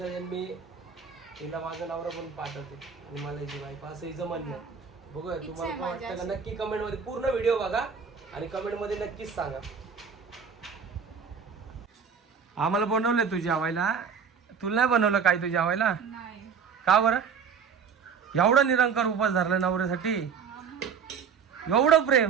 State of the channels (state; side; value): quieter; left; 6.4 dB